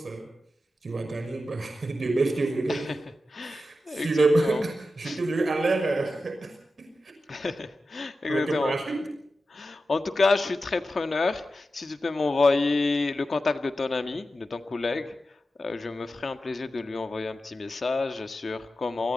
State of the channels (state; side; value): normal; both; correlation 0.92